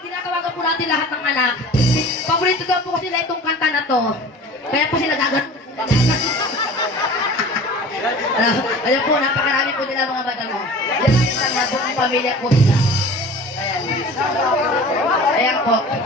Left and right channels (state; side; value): normal; both; correlation 0.41